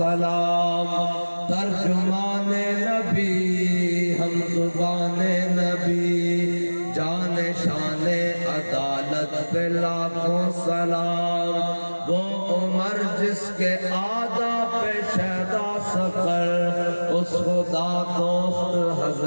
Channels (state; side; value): inverted; both; correlation -1.00